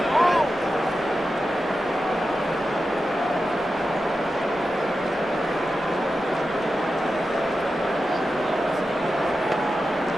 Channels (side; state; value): both; normal; correlation 0.91